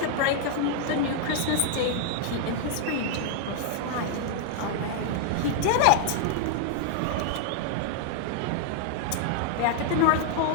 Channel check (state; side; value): different; both; correlation 0.00